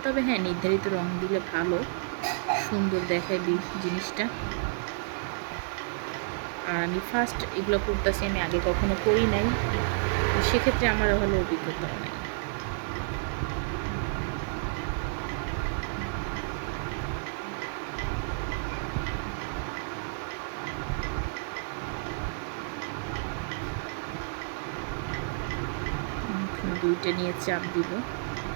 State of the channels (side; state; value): left; silent; 57 dB below the other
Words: তবে হ্যাঁ নির্ধারিত রং দিলে ভালো, সুন্দর দেখায় জিনিসটা। আর আমি ফার্স্ট এগুলো করতেছি, আমি আগে কখনো করি নাই, তো সেক্ষেত্রে আমার ভালো অভিজ্ঞতাও নাই। দুইটা নিয়ে চাপ দিব,